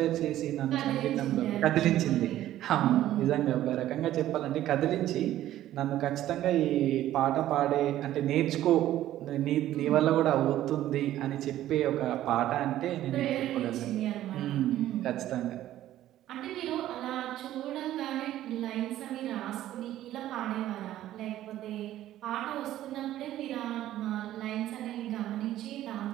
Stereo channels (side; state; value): left; quieter; 13.4 dB